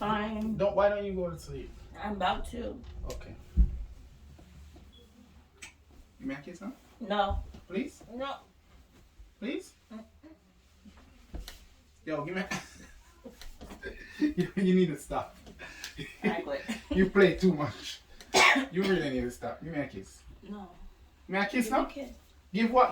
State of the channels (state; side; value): identical; both; correlation 1.00